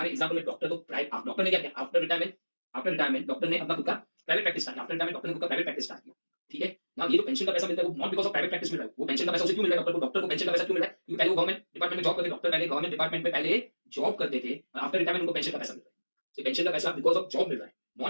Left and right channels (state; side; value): inverted; both; correlation -1.00